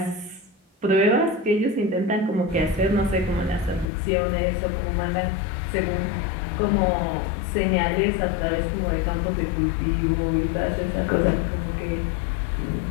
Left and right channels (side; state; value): right; drops out; at 3.9 s